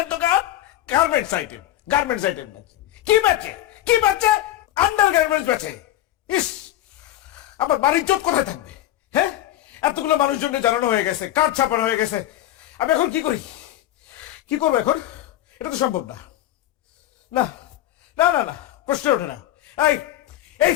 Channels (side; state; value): right; quieter; 13.7 dB